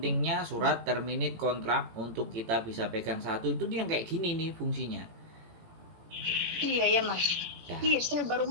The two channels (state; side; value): late; left; 18 ms